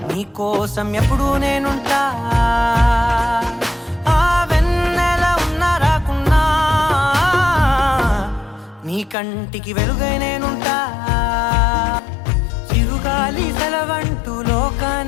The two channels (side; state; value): right; drops out; at 9.2 s